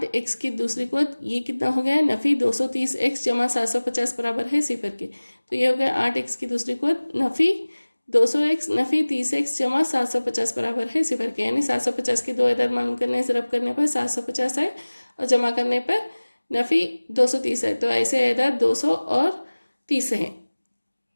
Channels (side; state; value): both; inverted; correlation -1.00